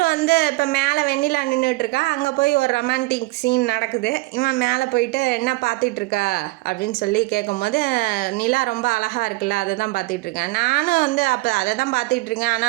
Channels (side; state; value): left; quieter; 22.2 dB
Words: வந்து இப்போ மேலே வெண்ணிலா நின்றுட்டுருக்கா, அங்கே போய் ஒரு ரொமான்டிக் சீன் நடக்குது. இவன் மேலே போயிட்டு என்ன பார்த்துட்ருக்கா அப்படின்னு சொல்லி கேட்கும்போது, நிலா ரொம்ப அழகாக இருக்குல்ல, அதை தான் பார்த்துட்ருக்கேன், நானும் வந்து அப்போ அதை தான் பார்த்துட்ருக்கேன்,